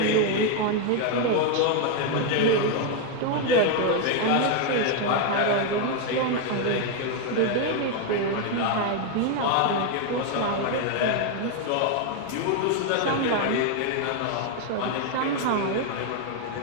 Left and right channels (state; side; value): different; both; correlation 0.01